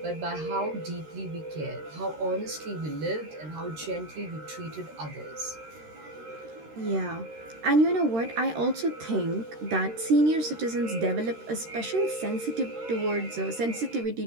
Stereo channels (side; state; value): left; late; 13 ms